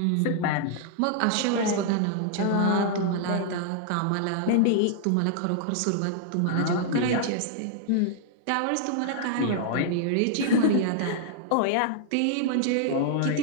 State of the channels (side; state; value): both; different; correlation -0.01